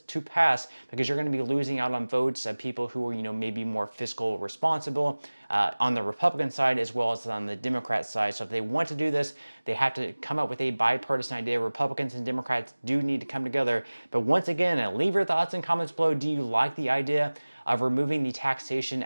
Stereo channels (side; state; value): both; inverted; correlation -1.00